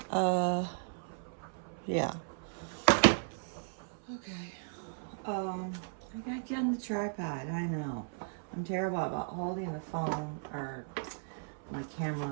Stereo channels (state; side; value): silent; left; 54 dB below the other